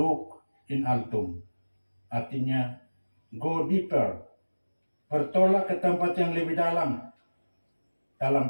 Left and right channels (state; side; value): inverted; both; correlation -1.00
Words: in altum, artinya go deeper, bertolak ke tempat yang lebih dalam. Dalam